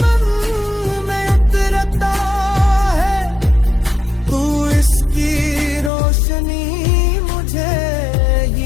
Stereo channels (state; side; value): drops out; right; at 5.9 s